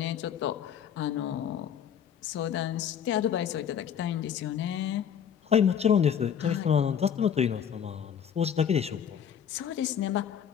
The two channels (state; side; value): quieter; right; 8.5 dB